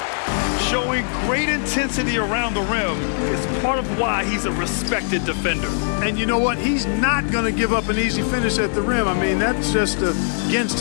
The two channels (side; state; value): right; silent; digital silence